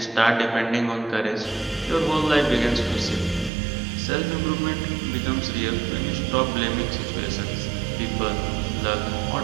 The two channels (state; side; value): drops out; left; at 3.5 s